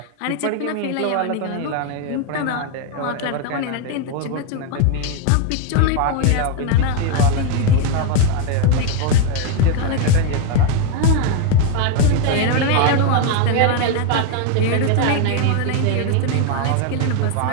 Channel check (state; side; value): different; both; correlation 0.01